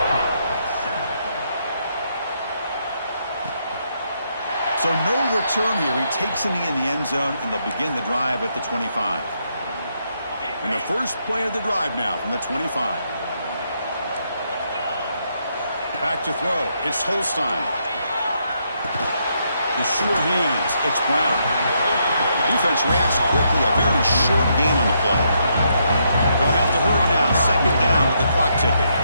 So no return here. He takes it in the end zone, and they'll begin the drive at the 25. And the first play of the drive now from the 25. Back to throw. It's Holstein. The sure hands. It's Brown. Defense reacts quickly. A very short gain on the play. They'll have to hurry now. Second down with the clock ticking.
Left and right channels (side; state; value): both; inverted; correlation -0.77